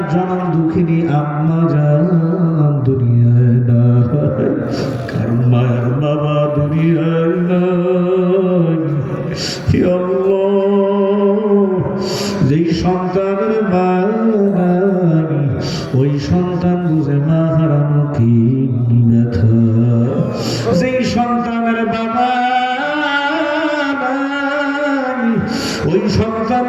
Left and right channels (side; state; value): both; identical; correlation 1.00